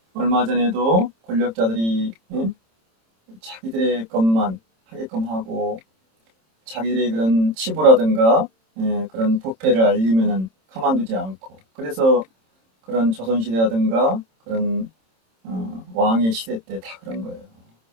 얼마 전에도 권력자들이 예? 자기들의 것만 하게끔 하고 자기들의 그런 치부라든가 예, 그런 부패를 알리면은 가만두지 않고 그래서 그런 조선시대라든가 그런 왕의 시대 때 다 그런 거예요.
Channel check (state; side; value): late; left; 27 ms